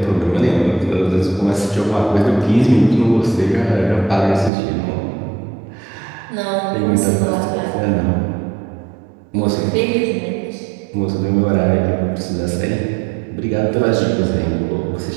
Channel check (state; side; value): drops out; left; at 4.5 s